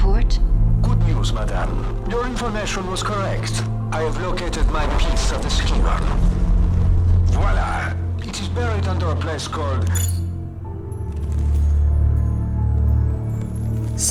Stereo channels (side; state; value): both; identical; correlation 1.00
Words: Good news, madame. Your information was correct. I have located my piece of the Scion. Voila! It is buried under a place called...